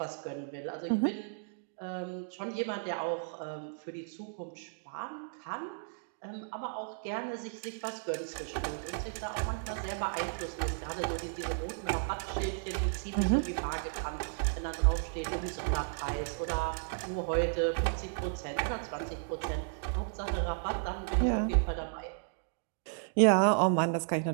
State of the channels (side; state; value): left; silent; digital silence